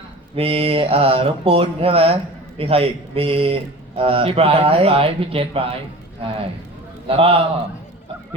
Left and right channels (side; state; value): both; normal; correlation 0.37